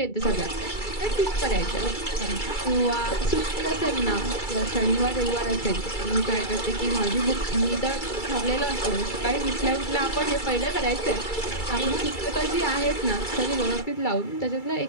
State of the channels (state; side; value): late; right; 2.3 ms